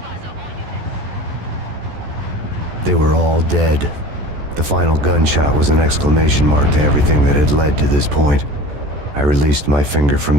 all units. They were all dead. The final gunshot was an exclamation mark to everything that had led to this point. I released my finger from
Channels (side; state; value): left; late; 14 ms